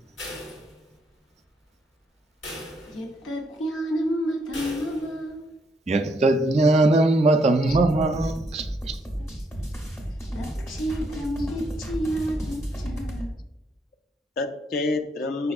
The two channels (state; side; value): normal; both; correlation 0.73